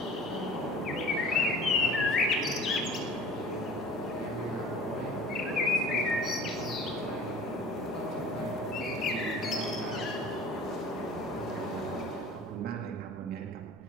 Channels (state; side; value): noise; right; rumble, 28 dB below the sound